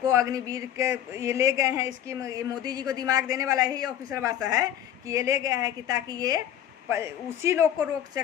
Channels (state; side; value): quieter; right; 10.6 dB